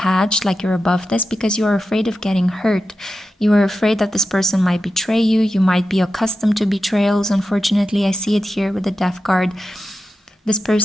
like you're above this, because you're afraid of getting hurt. You are afraid that this person might betray you. You might be accustomed to betrayals. Unfortunately, I see it here with the death card. This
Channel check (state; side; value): normal; both; correlation 0.90